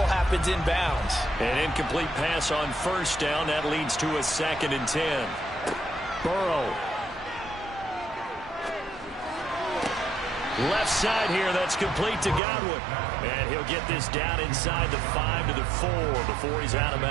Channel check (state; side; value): drops out; left; at 12.4 s